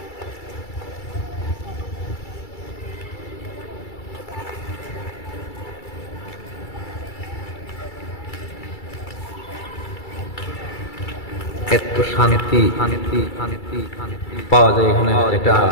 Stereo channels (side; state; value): right; late; 2.3 ms